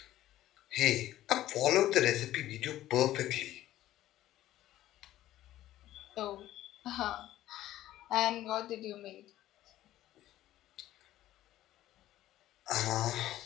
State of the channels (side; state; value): right; quieter; 14.1 dB